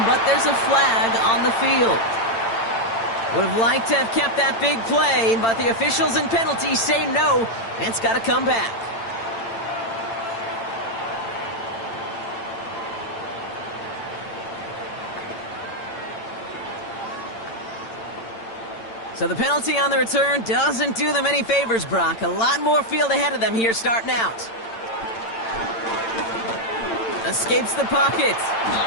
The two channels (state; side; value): late; right; 8.9 ms